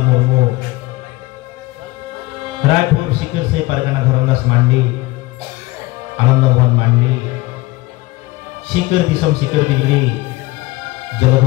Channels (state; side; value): quieter; right; 20.2 dB